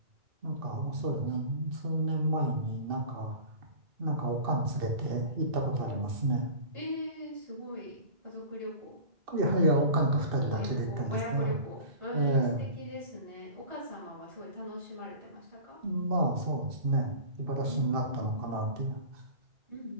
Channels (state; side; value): late; left; 2.6 ms